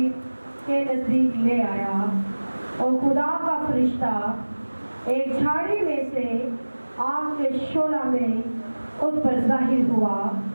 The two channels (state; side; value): inverted; both; correlation -1.00